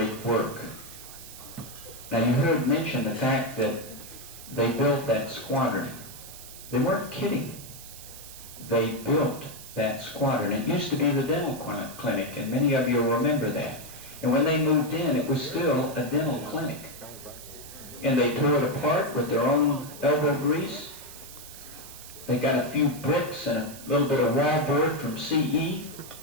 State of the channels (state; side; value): noise; right; hiss, 15 dB below the sound